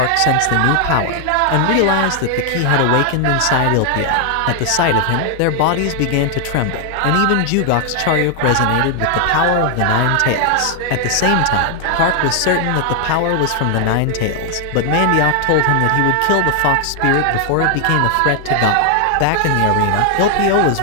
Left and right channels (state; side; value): different; both; correlation 0.00